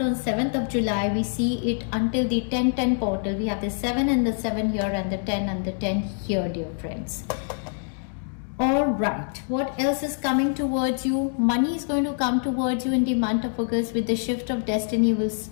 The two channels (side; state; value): right; silent; 62 dB below the other